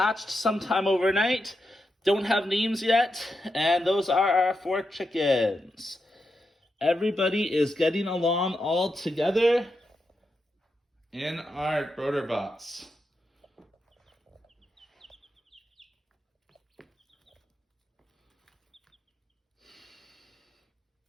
sometime overnight, don't have names yet, and those are our four chickens. Everybody is getting along all together in our broder bots.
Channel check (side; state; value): both; normal; correlation 0.86